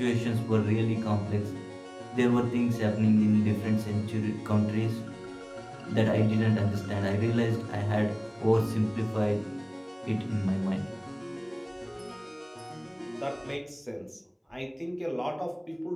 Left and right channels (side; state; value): both; identical; correlation 1.00